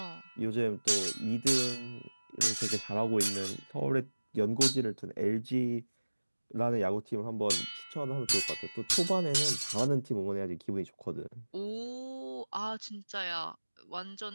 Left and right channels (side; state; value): both; inverted; correlation -1.00